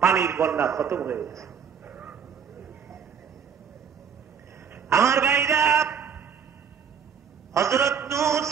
পানির বন্যা খতম হয়ে গেছে। আমার ভাইরা, হযরত নূহ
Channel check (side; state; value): left; quieter; 7.2 dB